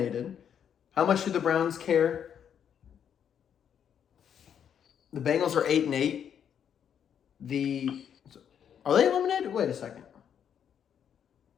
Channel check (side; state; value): right; quieter; 8.5 dB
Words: How much do the Browns care? The Bengals are 8-8. Are they eliminated? Wait a second.